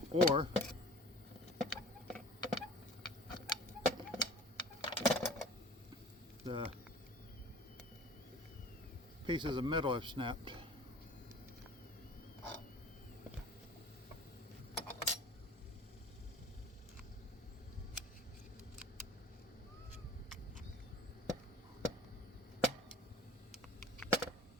or the pieces of metal have snapped.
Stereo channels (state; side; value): normal; both; correlation 0.45